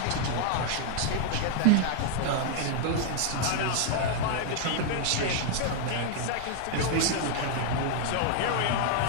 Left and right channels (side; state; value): both; different; correlation 0.00